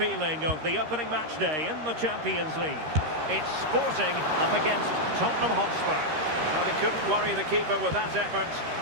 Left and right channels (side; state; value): left; late; 13 ms